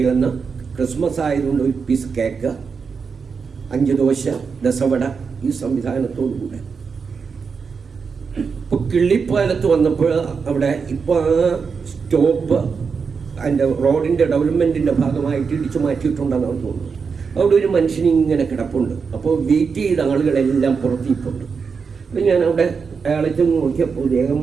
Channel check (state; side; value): quieter; left; 5.5 dB